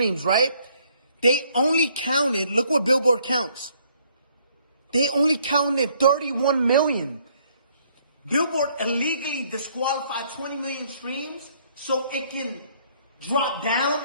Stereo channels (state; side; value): inverted; both; correlation -0.65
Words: right? They only counted, look what Billboard counts. They only counted 31 million. Billboard illegally disqualified 20 million streams so it can drop down